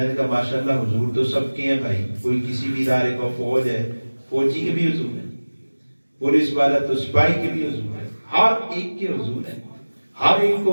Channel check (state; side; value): inverted; both; correlation -1.00